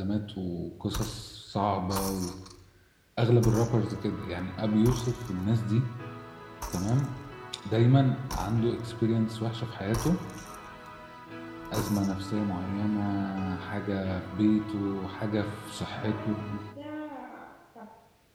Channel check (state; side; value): identical; both; correlation 1.00